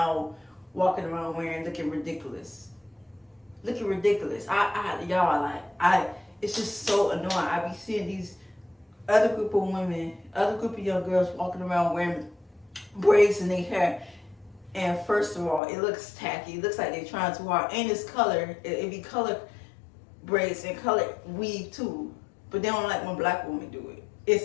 walking around wearing, looking ridiculous. Looking ridiculous. It's just so annoying. I be seeing these other group of women, other group of young girls walking around wearing braids in their hair. And first of all, it looks tacky. It looks like they're trying too hard. And it's color. It be color braids and color weave too. But they don't like when black women do it.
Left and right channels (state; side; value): drops out; right; at 15.6 s